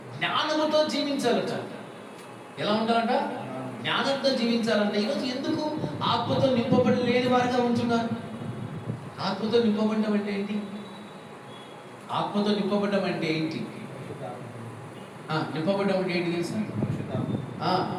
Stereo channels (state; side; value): identical; both; correlation 1.00